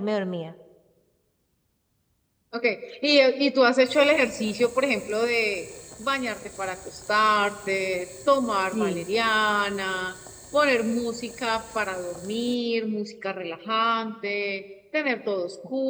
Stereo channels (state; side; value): identical; both; correlation 1.00